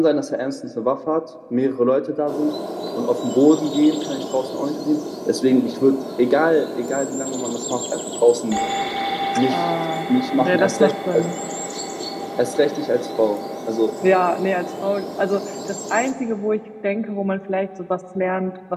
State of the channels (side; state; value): both; identical; correlation 1.00